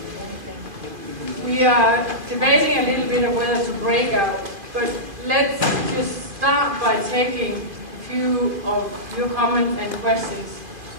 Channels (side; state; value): left; late; 2.5 ms